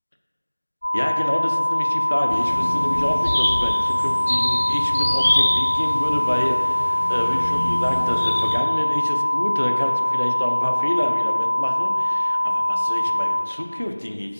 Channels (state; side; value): inverted; both; correlation -1.00